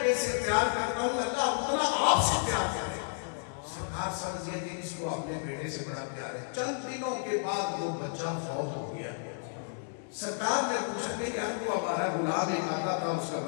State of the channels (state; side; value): silent; right; digital silence